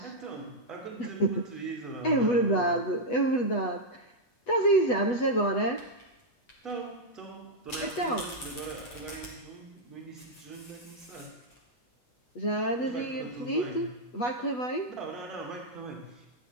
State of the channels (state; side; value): late; right; 8.1 ms